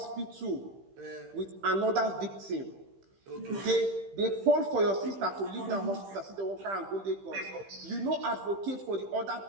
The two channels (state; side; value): late; left; 15 ms